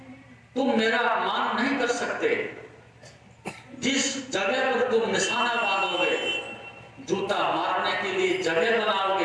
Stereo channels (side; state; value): both; identical; correlation 1.00